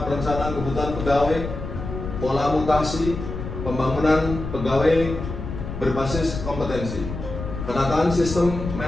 perencanaan kebutuhan pegawai, pola mutasi, pembangunan pegawai berbasis kompetensi. Penataan sistem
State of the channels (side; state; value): left; noise; rumble, 7 dB below the sound